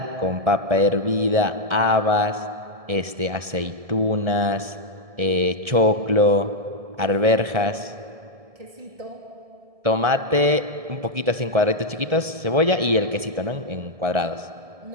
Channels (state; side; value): late; left; 1.7 ms